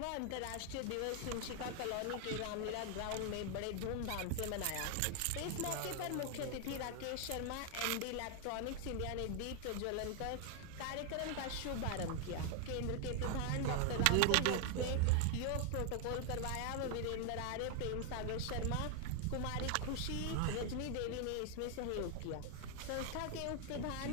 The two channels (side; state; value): both; different; correlation 0.00